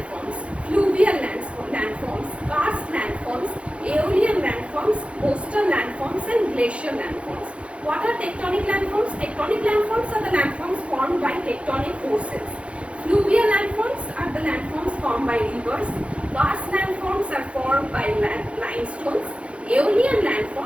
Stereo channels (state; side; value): late; left; 0.061 ms